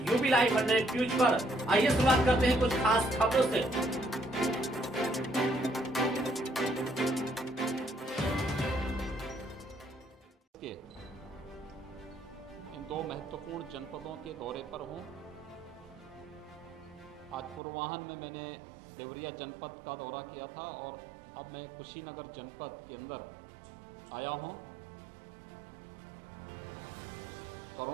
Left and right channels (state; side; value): drops out; left; at 17.6 s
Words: लाइव 100 न्यूज पर। आइए शुरुआत करते हैं कुछ खास खबरों से। इन दो महत्वपूर्ण जनपदों के दौरे पर हूं। आज पूर्वाह्न में मैंने देवरिया जनपद का दौरा किया था और अब मैं कुशीनगर जनपद के अंदर आया हूं।